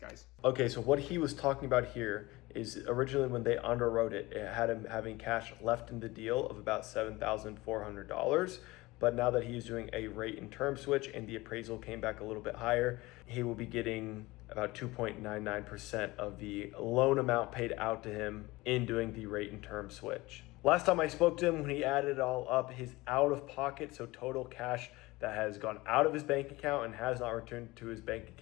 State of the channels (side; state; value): right; quieter; 20.9 dB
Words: Okay, so what he was talking about here is originally when they underwrote it, it had him having cash left in the deal of about $7,400. But now that he is doing a rate and term switch and the appraisal came back a little bit higher, he will be getting about 2.99% of the loan amount paid out to him in doing the rate and term switch. Last time I spoke to him, when he added it all up, his out of pocket, so total cash that has gone out of his bank account and has not returned to his bank